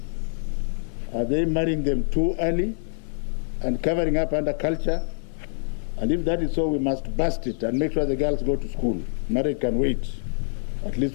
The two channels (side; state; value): right; silent; 60 dB below the other